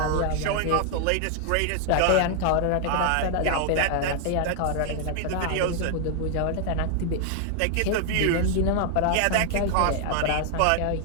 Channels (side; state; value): both; different; correlation 0.00